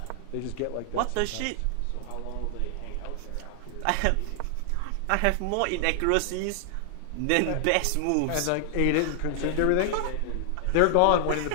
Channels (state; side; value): different; both; correlation 0.00